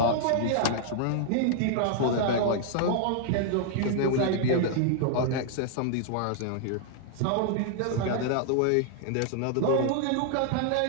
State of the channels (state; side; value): different; both; correlation -0.01